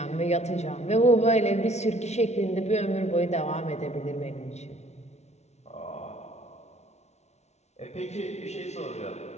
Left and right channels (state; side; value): late; right; 0.32 ms